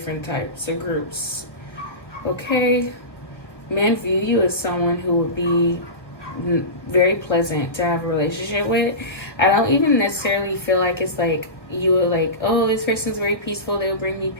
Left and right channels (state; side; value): late; right; 1.3 ms